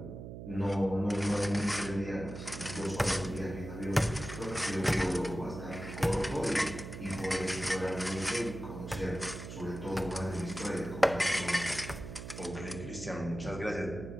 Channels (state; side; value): noise; right; hum, 9 dB below the sound